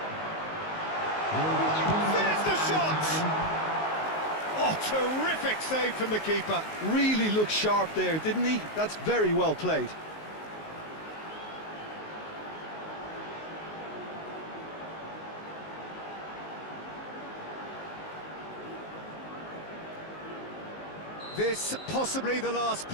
There's the shot! Oh, terrific save from the keeper. Really looked sharp there, didn't he? That's very well played. This possibly the last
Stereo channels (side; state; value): right; late; 19 ms